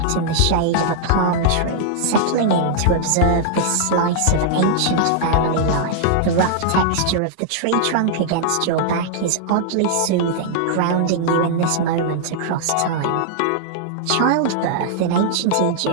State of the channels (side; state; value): both; different; correlation -0.01